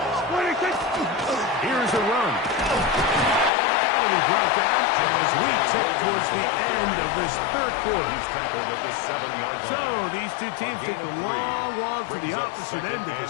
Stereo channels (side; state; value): right; drops out; at 3.5 s